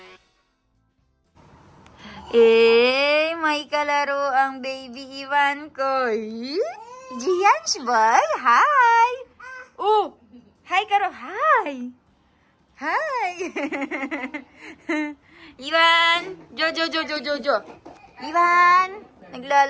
May kalaro ang baby Ivan ko. Gianch boy, hi! Oh, hi Karo, hi! Hi! Ivan! Jo. Ivan!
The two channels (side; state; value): both; identical; correlation 1.00